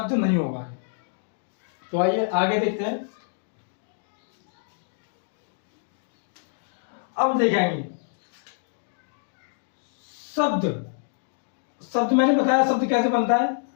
नहीं होगा। तो आइए आगे देखते हैं। अब देखेंगे शब्द। शब्द मैंने बताया शब्द कैसे बनता है?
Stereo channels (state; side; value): silent; right; digital silence